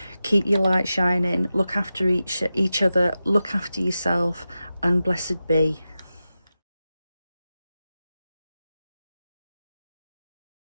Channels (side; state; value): both; inverted; correlation -0.92